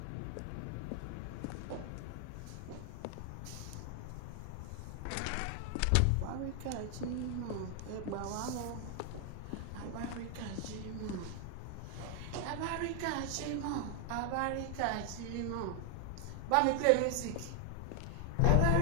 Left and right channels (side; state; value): both; different; correlation 0.00